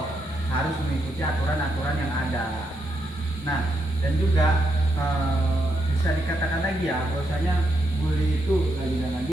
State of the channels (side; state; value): both; normal; correlation 0.81